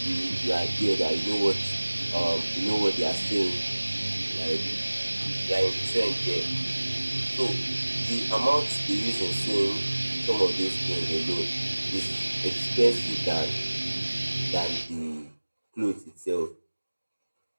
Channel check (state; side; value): inverted; both; correlation -1.00